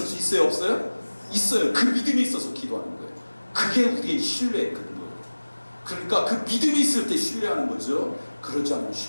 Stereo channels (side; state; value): both; inverted; correlation -1.00